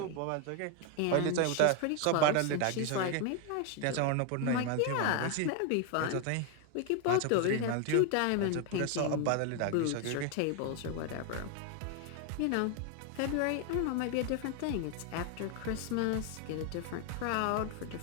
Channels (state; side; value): different; both; correlation 0.01